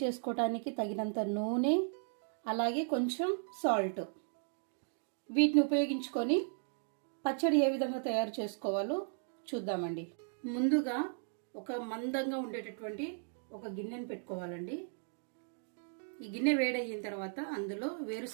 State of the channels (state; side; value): silent; left; digital silence